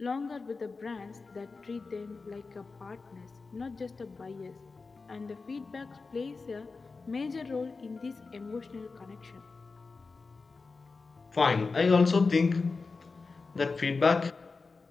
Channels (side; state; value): right; quieter; 4.2 dB